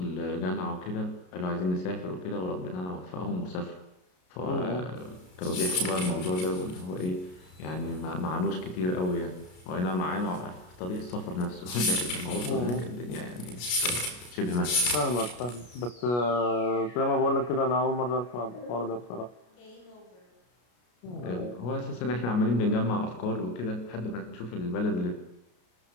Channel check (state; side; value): late; right; 33 ms